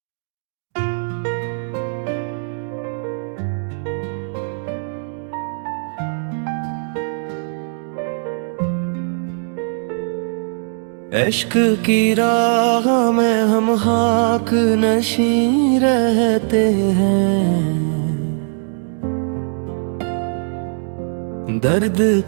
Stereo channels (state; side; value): silent; left; digital silence